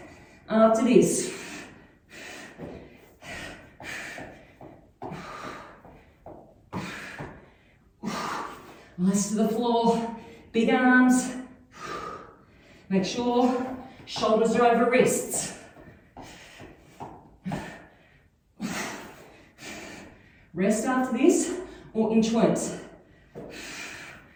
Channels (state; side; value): identical; both; correlation 1.00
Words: after this. Eyes to the floor, big arms. Make sure shoulders are over wrists. Rest after this, or inchworms.